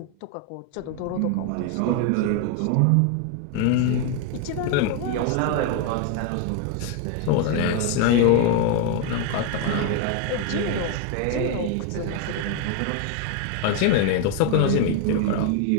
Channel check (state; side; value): different; both; correlation 0.01